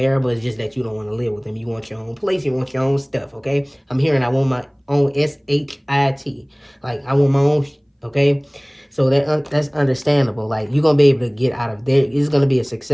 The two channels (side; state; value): both; identical; correlation 1.00